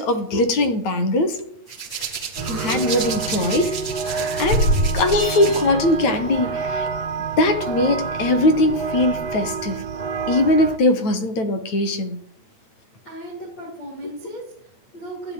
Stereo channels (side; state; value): right; late; 9.1 ms